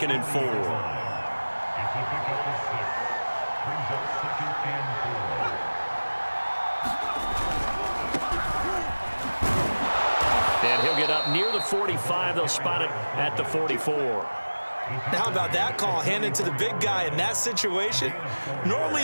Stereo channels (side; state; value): both; inverted; correlation -1.00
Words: and 4. And he'll get up near the 45. They'll spot it at the 44. Now, how about that call handed to the big guy in that situation? Normally